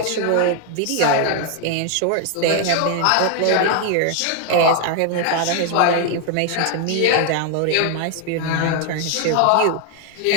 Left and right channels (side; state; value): both; different; correlation 0.00